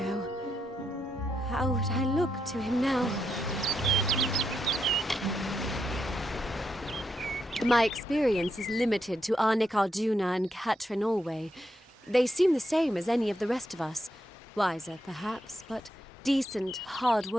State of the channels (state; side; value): normal; both; correlation 0.82